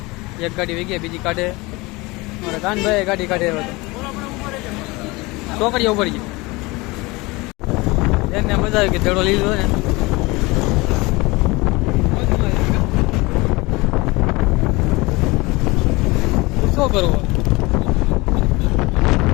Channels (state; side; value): quieter; right; 23.4 dB